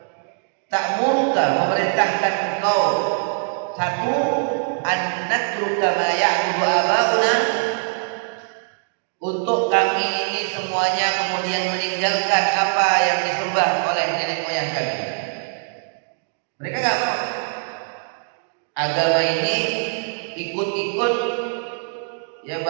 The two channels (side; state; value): left; silent; 64 dB below the other